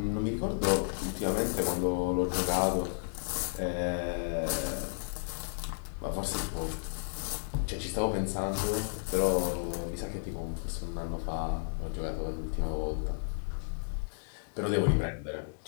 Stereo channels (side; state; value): right; silent; digital silence